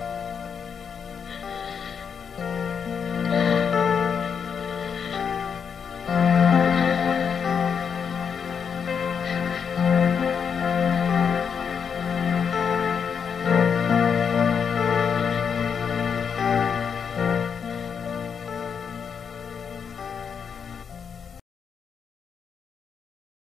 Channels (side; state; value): right; quieter; 6.8 dB